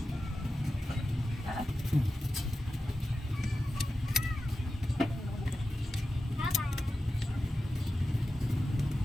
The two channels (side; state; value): both; normal; correlation 0.93